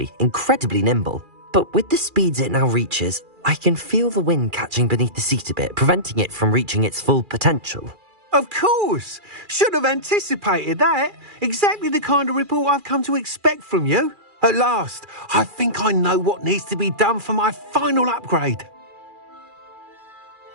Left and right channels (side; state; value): left; late; 2.4 ms